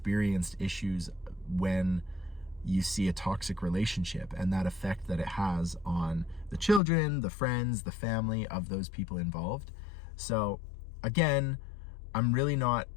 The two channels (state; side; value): drops out; right; at 6.8 s